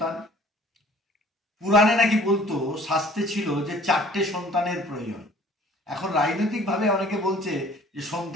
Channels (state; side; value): normal; both; correlation 0.52